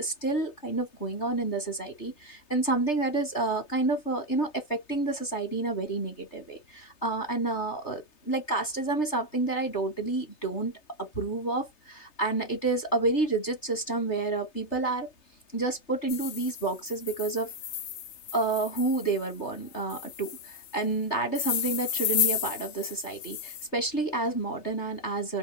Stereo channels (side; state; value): right; late; 3.3 ms